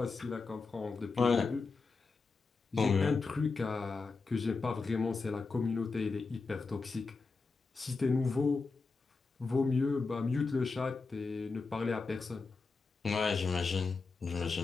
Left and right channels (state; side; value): quieter; right; 4.3 dB